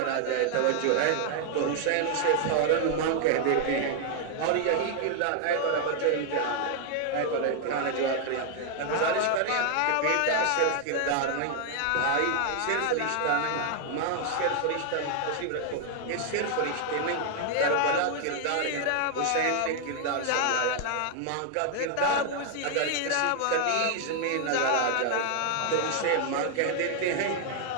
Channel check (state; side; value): different; both; correlation 0.00